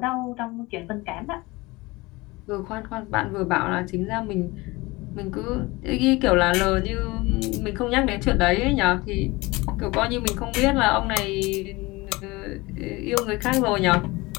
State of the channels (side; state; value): right; quieter; 22.4 dB